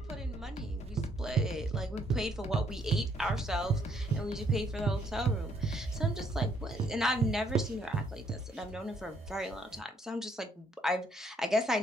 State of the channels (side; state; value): both; normal; correlation 0.69